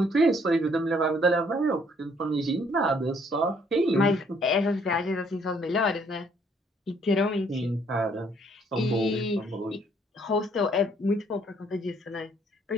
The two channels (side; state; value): both; normal; correlation 0.65